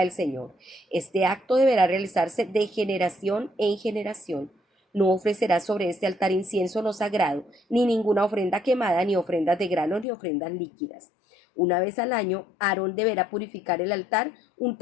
Señor. Este acto deberá realizarse de generación en generación. No ofrecerás sobre este altar incienso no sagrado, ni ninguna ofrenda quemada, ni ofrendas de grano, ni ofrendas líquidas. Una vez al año, Aarón deberá purificar el altar,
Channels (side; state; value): right; drops out; at 10.1 s